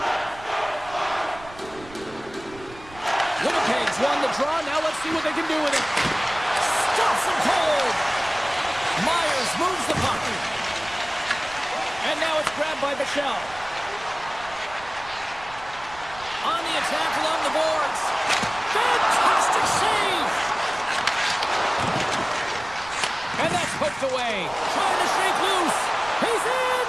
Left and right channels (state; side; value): noise; right; rumble, 20 dB below the sound